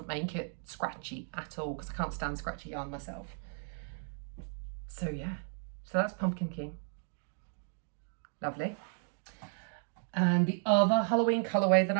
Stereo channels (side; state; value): left; silent; 55 dB below the other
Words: make it scratchy at all, because I can't stand scratchy yarn myself. So yeah, so that's Pumpkin King. Lovely. And the other Halloween colorway that